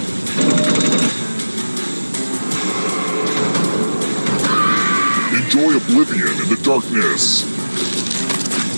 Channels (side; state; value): both; inverted; correlation -1.00